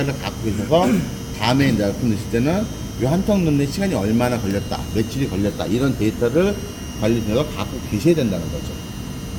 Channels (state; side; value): identical; both; correlation 1.00